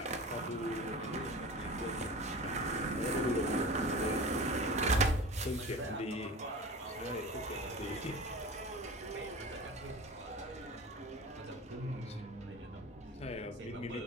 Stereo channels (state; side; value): normal; both; correlation 0.35